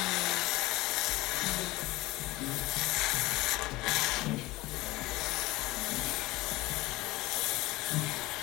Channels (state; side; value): quieter; right; 20.0 dB